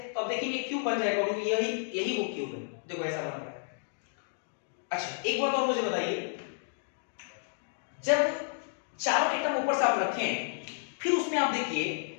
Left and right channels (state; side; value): silent; right; digital silence